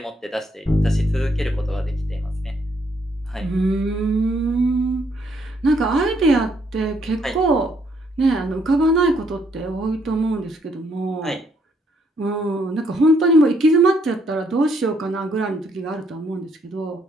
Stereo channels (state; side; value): normal; both; correlation 0.71